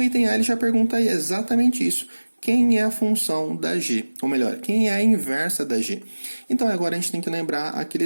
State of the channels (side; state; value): both; inverted; correlation -1.00